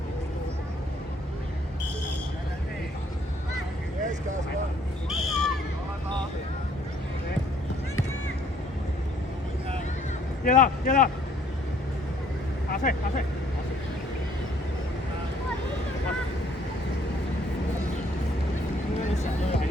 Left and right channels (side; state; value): both; normal; correlation 0.63